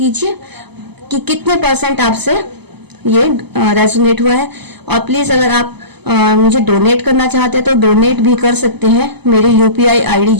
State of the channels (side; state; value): left; late; 0.99 ms